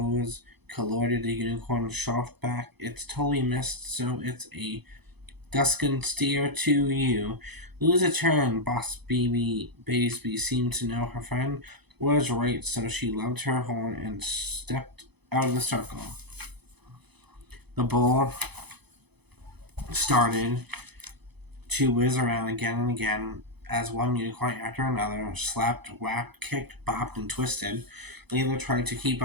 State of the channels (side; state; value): left; late; 0.98 ms